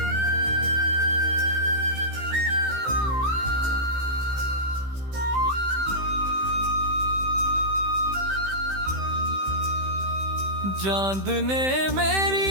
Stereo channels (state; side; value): late; left; 15 ms